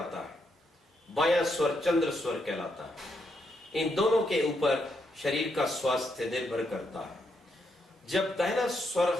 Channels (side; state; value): both; normal; correlation 0.79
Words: है, बायां स्वर चंद्र स्वर कहलाता है। इन दोनों के ऊपर शरीर का स्वास्थ्य निर्भर करता है। जब दाहिना स्वर